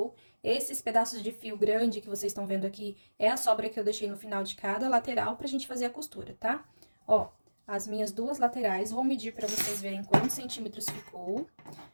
Esses pedaços de fio grande que vocês estão vendo aqui é a sobra que eu deixei no final de cada lateral pra gente fazer a costura, tá? Ó, as minhas duas laterais, vou medir pra vocês verem quantos centímetros ficou.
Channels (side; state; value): both; inverted; correlation -1.00